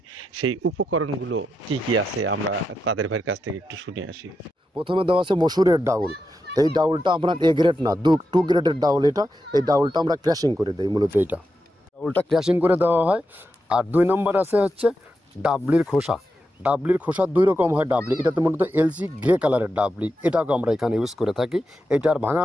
সেই উপকরণগুলো কি কি আছে। আমরা কাদের ভাইয়ের কাছ থেকে একটু শুনে আসি। প্রথমে দেওয়া আছে মসুরের ডাউল। এই ডাউলটা আপনার এ গ্রেড না, 2 গ্রেডের ডাউল এটা। এই ডাউলটা আমরা ক্র্যাশিং করে দিই, মূলত এইটা ডাউলটা ক্র্যাশিং করে দেওয়া হয়। আর 2 নম্বর আছে হচ্ছে ডাবলির খোসা। ডাবলির খোসা 2 রকম হয় ডাবলি, এটাতে মূলত এলসি গ্রে কালারের ডাবলি, এটাকে আমরা এখানে ইউজ করে থাকি। এটা আর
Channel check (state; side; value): normal; both; correlation 0.87